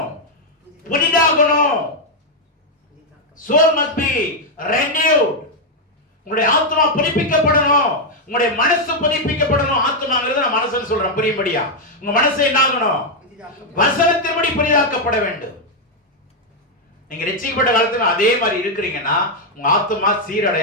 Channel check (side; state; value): both; normal; correlation 0.00